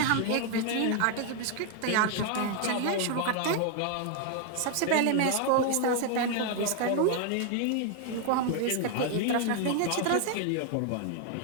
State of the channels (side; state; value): both; different; correlation 0.00